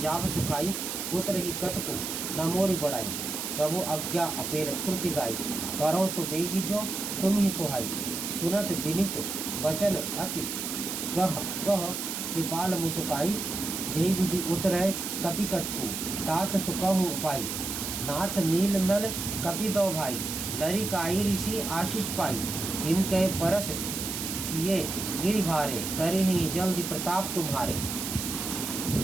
सुखाई, पुत्र ही कटकु न मोरी बढ़ाई। प्रभु आज्ञा अपेल श्रुति गाई, करो सो बेगी जो तुम ही सुहाई। सुनत विनित वचन अति कह कह, कृपाल मुसुकाई। जही विधि उतरै कपि कटकु, तात सुकहु उपाई। नाथ नील नल कपि दो भाई, लरी काई ऋषि आशीष पाई। तिन के परस किए गिरि भारे, तरे ही जल्दी प्रताप तुम्हारे।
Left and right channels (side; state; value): right; noise; hiss, 4 dB below the sound